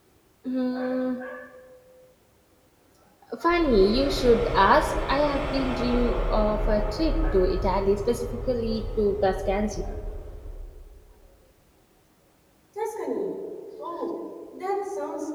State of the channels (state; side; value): identical; both; correlation 1.00